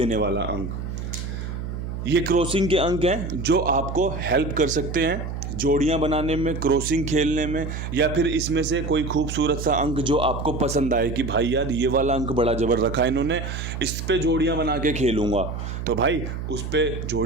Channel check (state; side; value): noise; right; hum, 6 dB below the sound